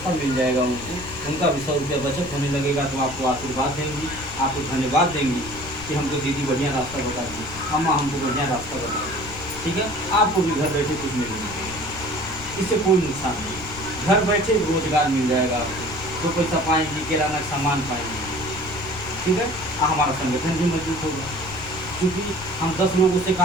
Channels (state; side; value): noise; left; rumble, 14 dB below the sound